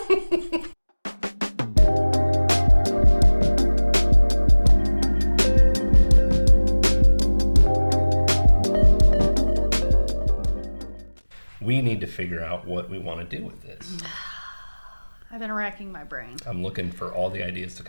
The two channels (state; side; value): inverted; both; correlation -1.00